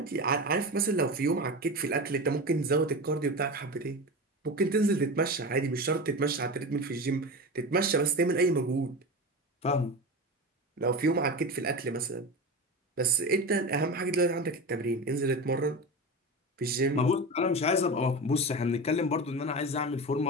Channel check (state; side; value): normal; both; correlation 0.25